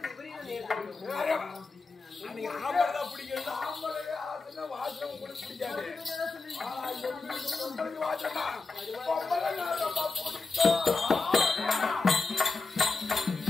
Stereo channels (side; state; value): right; quieter; 3.9 dB